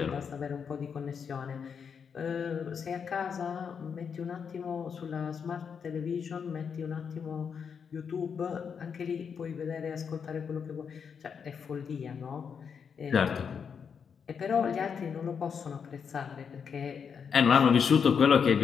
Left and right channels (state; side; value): quieter; right; 6.7 dB